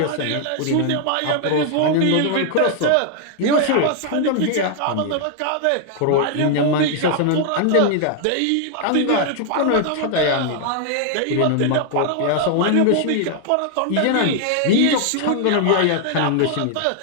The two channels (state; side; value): different; both; correlation 0.00